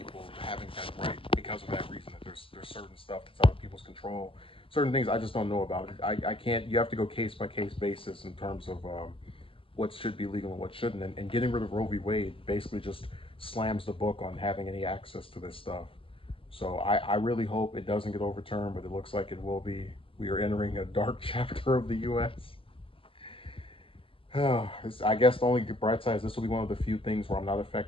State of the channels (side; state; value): right; late; 0.26 ms